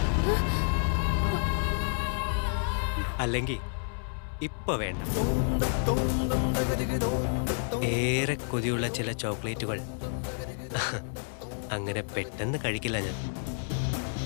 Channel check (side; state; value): right; silent; 58 dB below the other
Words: അല്ലെങ്കിൽ ഇപ്പൊ വേണ്ട. ഏറെ കൊതിയുള്ള ചില ചോക്ലേറ്റുകൾ അങ്ങനെ പെട്ടെന്ന് കഴിക്കില്ല ഞാൻ.